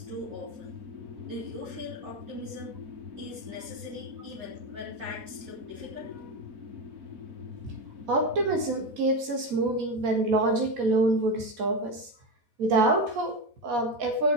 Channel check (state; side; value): late; left; 4.1 ms